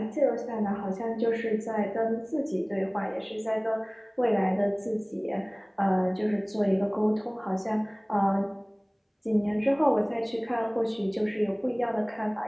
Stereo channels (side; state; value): both; identical; correlation 1.00